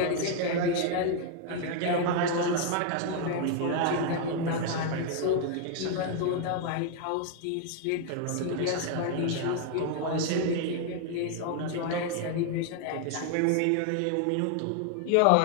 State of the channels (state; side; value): different; both; correlation 0.00